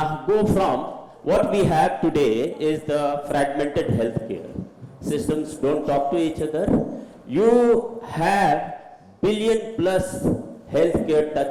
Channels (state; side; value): identical; both; correlation 1.00